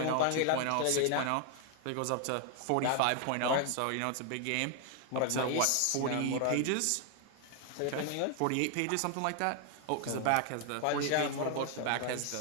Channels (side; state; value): both; different; correlation 0.00